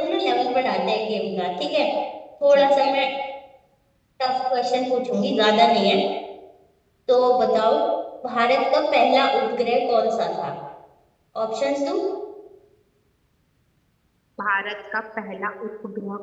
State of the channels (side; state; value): both; identical; correlation 1.00